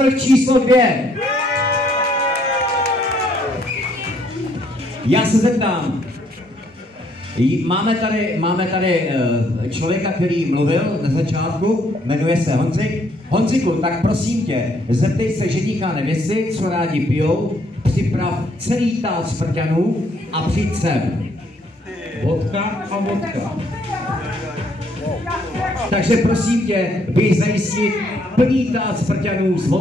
číslo 2? Já se zeptám, máme tady člověka, který mluvil na začátku, jmenuje se Honzik. Honziku, tak prosím tě, zeptej se ženícha a nevěsty, co rádi pijou, připrav celý tál smrťanů a přijď sem. Vodka a vodka. Takže prosím tě, běž zajistit plný tál smrťanů s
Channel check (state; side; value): normal; both; correlation 0.68